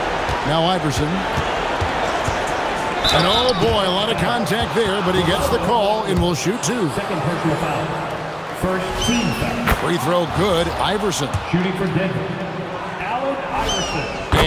Now Iverson. And oh boy, a lot of contact there, but he gets the call and will shoot 2. Second personal foul. First team foul. Free throw good. Iverson. Shooting for Denver. Allen Iverson.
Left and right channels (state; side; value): identical; both; correlation 1.00